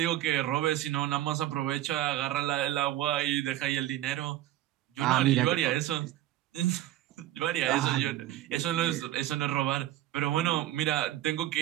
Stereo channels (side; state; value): left; quieter; 14.4 dB